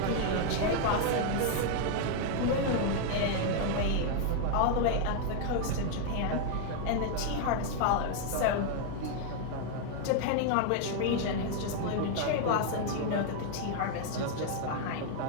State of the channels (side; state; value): both; different; correlation 0.00